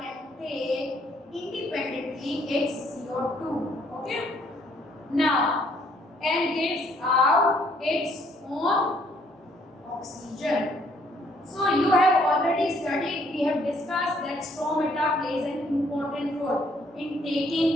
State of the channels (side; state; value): both; normal; correlation 0.65